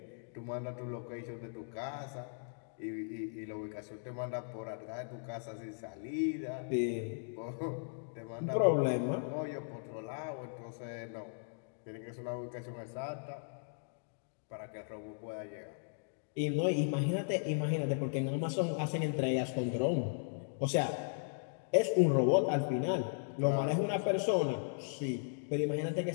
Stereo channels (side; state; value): right; silent; digital silence